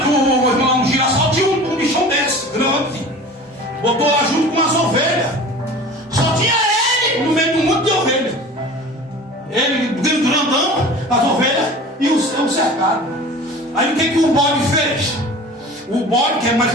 um girassol, tinha um bichão desse, grande. Botou lá junto com as ovelhas. Só tinha ele no meio de um monte de ovelhas. Ele grandão, as ovelhas e o cercado. Aí o que o bode fez? O bode, que é mais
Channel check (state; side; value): normal; both; correlation 0.40